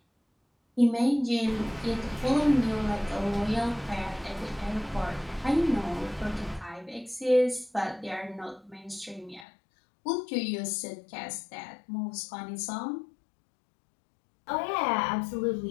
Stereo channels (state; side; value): drops out; right; at 9.5 s